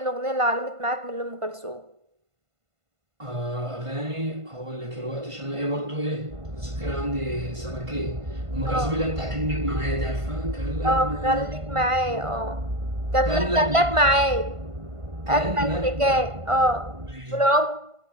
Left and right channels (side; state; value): left; late; 1.5 ms